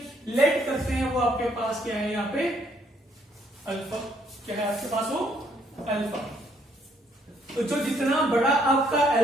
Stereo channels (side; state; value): both; normal; correlation 0.68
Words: लेट करते हैं वो आपके पास क्या है, यहाँ पे अल्फा, क्या है आपके पास वो अल्फा। तो जो जितना बड़ा आपका